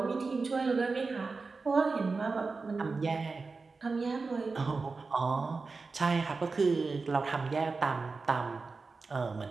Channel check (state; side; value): quieter; left; 4.2 dB